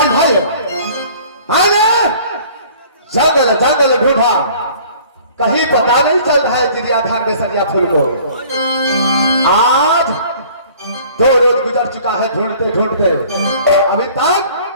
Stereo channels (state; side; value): inverted; both; correlation -0.51